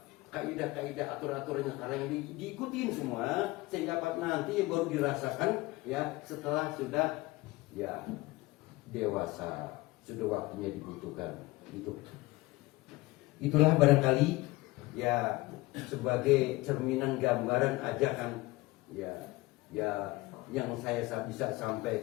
kaidah-kaidah aturan-aturannya sekarang yang diikutin semua sehingga nanti baru dirasakan ya setelah sudah ya dewasa, sudah waktunya dibutuhkan. Itulah barangkali ya sebagai cerminan gambaran ajakan ya yang saya bisa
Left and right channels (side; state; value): right; quieter; 20.7 dB